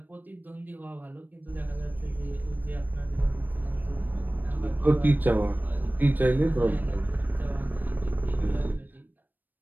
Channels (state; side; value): late; left; 0.089 ms